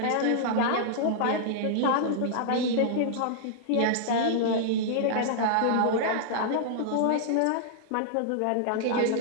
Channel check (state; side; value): different; both; correlation -0.01